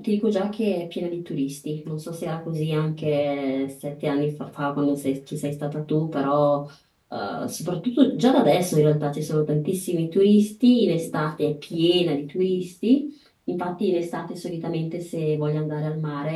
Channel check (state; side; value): identical; both; correlation 1.00